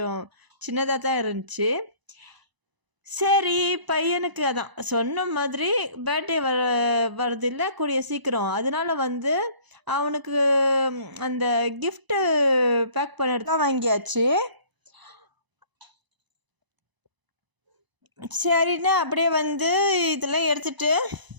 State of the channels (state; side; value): late; left; 1.0 ms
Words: சின்னதாக தான் இருந்துச்சு. சரி, பையனுக்கு அதான் சொன்ன மாதிரி பர்த்டே வரதில்லை கூடிய சீக்கிரம், அதனால வந்து அவனுக்கு அந்த கிஃப்ட்டு பேக் பண்ணிட்டு தான் வாங்கியாச்சு. சரின்னு அப்படியே வந்து இதெல்லாம் எடுத்துகிட்டு